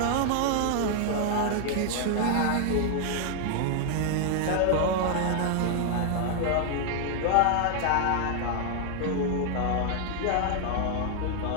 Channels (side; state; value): both; different; correlation 0.00